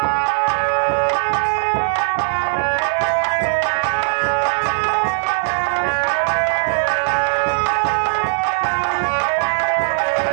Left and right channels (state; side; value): silent; left; digital silence